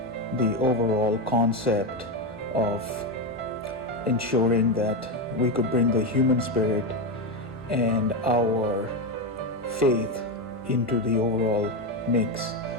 the overall concept of ensuring that we could bring the human spirit and our faith into the overall mix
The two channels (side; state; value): both; normal; correlation 0.12